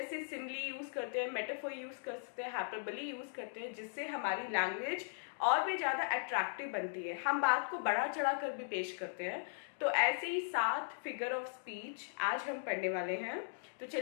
सिमिली यूज करते हैं, मेटाफोर यूज कर सकते हैं, हाइपरबोली यूज करते हैं, जिससे हमारी लैंग्वेज और भी ज्यादा अट्रैक्टिव बनती है, हम बात को बढ़ा चढ़ा कर भी पेश करते हैं। तो ऐसे ही 7 फिगर ऑफ स्पीच आज हम पढ़ने वाले हैं। तो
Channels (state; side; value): silent; right; digital silence